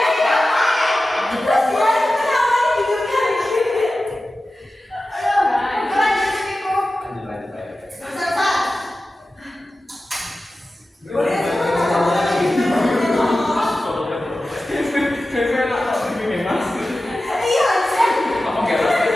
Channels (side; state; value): both; normal; correlation 0.95